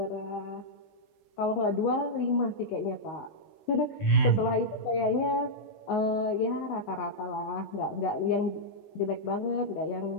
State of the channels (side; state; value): right; late; 19 ms